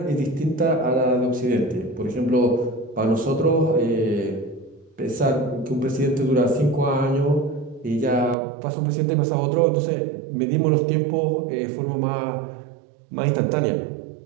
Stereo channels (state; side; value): drops out; left; at 8.3 s